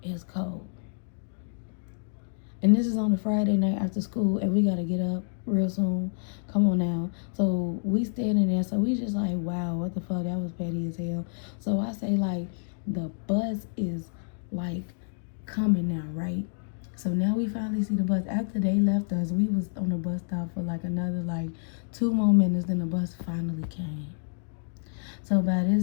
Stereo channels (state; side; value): silent; right; digital silence